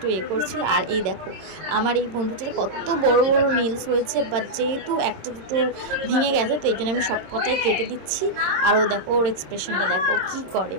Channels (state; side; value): late; left; 26 ms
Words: করছিল। আর এই দেখো আমার এই বন্ধুটার কত বড় বড় নীলস হয়েছে, বাট যেহেতু একটা দুটো ভেঙে গেছে তো এই জন্য আমি সব কটাই কেটে দিচ্ছি। আর ও দেখো ওর এক্সপ্রেশনটা দেখো কি করে।